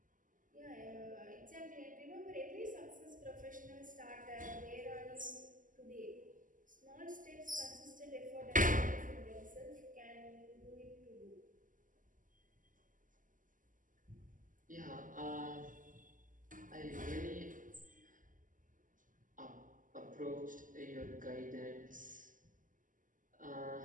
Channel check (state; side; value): late; left; 0.38 ms